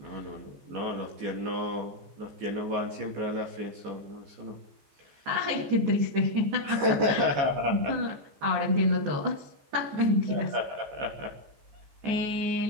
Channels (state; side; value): late; left; 15 ms